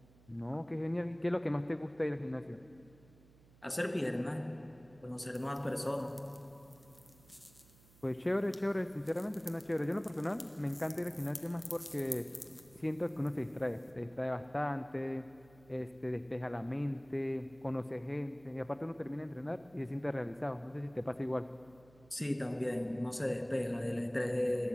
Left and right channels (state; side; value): noise; right; hum, 25 dB below the sound